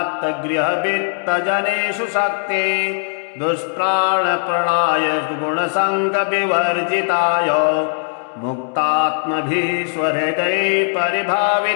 शक्ति दुष्प्राणप्रणाय गुणसङ्गविवर्जिताय मुक्तात्मभिः स्वहृदये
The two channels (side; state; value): right; silent; digital silence